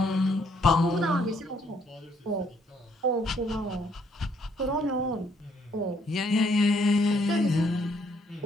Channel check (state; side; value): normal; both; correlation 0.69